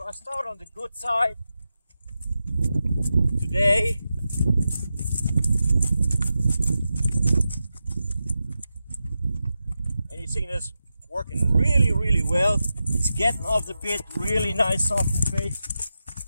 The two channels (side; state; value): both; inverted; correlation -0.90